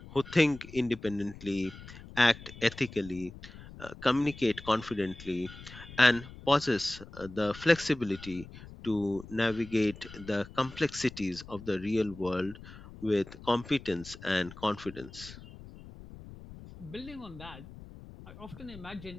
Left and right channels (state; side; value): noise; left; rumble, 16 dB below the sound